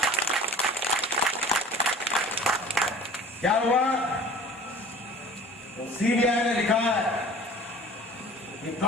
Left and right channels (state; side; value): normal; both; correlation 0.44